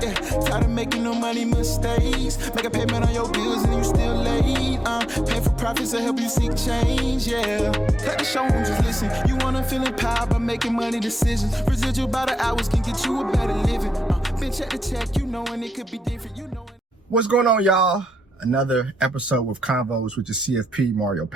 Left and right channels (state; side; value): normal; both; correlation 0.87